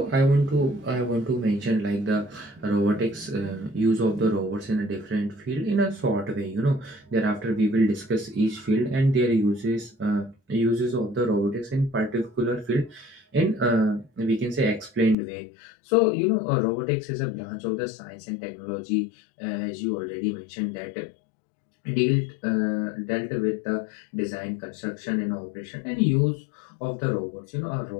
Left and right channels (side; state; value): right; drops out; at 15.2 s